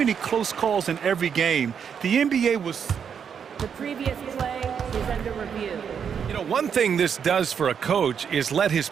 close calls in every game, the NBA was... The previous play is under review. You know, one thing this does for a coach is let his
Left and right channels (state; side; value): quieter; left; 7.4 dB